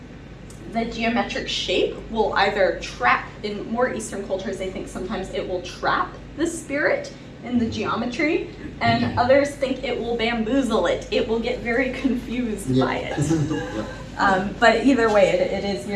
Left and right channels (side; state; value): both; identical; correlation 1.00